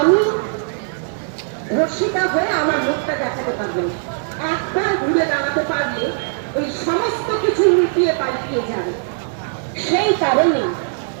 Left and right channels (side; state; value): left; silent; digital silence